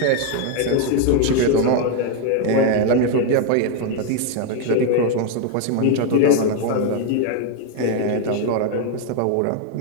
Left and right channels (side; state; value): both; different; correlation 0.01